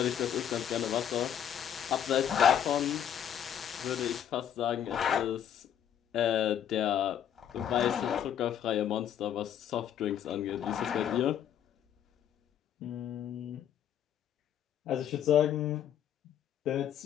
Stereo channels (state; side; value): quieter; right; 9.6 dB